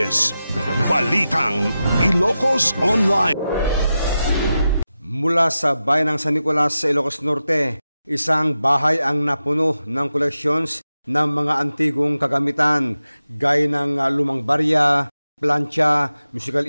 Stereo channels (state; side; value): inverted; both; correlation -0.92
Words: Balitang Ilocos Online. Mula sa bayan ng San Nicolas sa Ilocos Norte, isang bahay ang napuno ng collections ng mga antigong kagamitan gaya ng lumang barya, plancha, musical